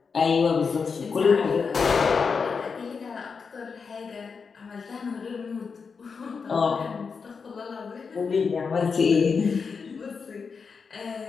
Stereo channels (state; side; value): quieter; right; 5.4 dB